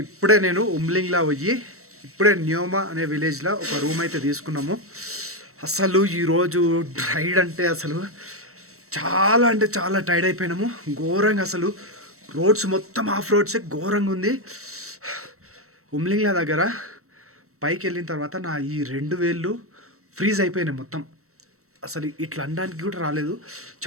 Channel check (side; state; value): left; late; 0.63 ms